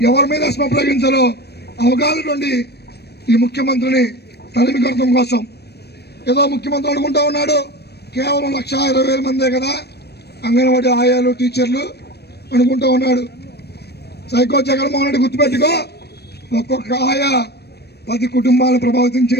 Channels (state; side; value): late; right; 0.47 ms